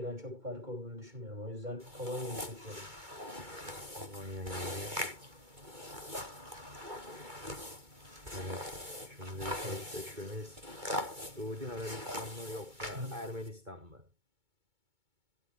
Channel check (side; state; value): left; late; 2.2 ms